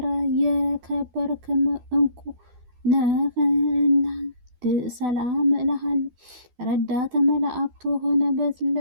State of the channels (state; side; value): late; left; 12 ms